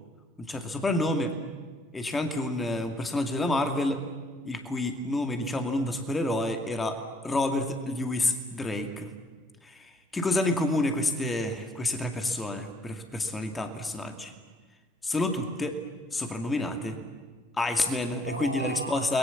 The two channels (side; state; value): both; normal; correlation 0.65